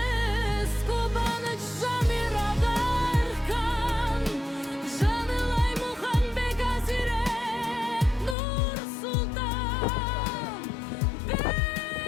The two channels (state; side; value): drops out; right; at 8.3 s